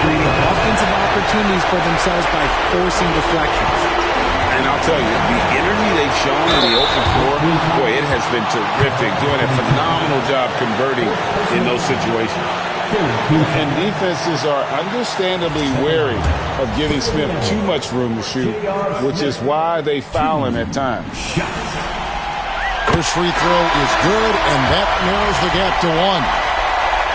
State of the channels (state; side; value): identical; both; correlation 1.00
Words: creating offensive opportunities for themselves by forcing deflections. And I'll tell you, the energy they've shown in the open floor, boy, it has been terrific, doing a phenomenal job converting in those situations. And defenses are understandably wary of giving Smith too much room to shoot, which is why they foul him at times. His free throw is good, and that narrows the gap to